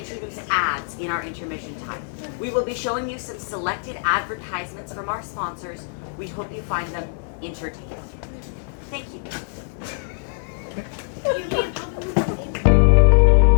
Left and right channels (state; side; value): silent; right; digital silence